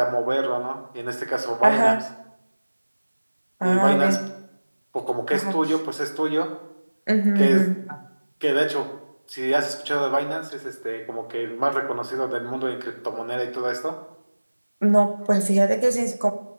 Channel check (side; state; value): both; inverted; correlation -1.00